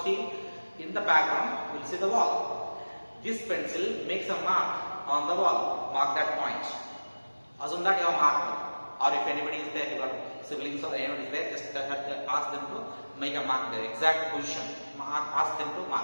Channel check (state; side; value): inverted; both; correlation -1.00